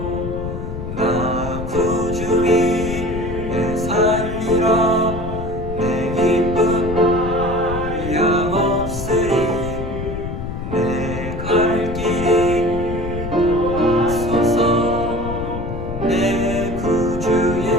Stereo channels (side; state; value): left; noise; rumble, 6 dB below the sound